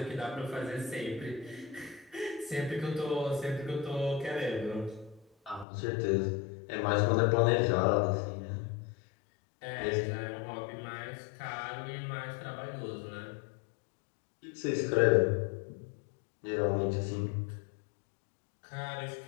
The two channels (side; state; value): right; drops out; at 5.7 s